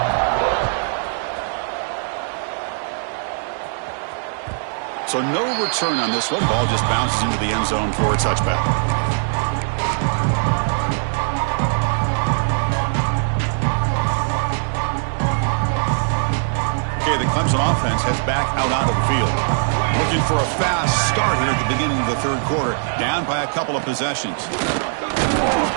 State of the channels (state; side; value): silent; left; 65 dB below the other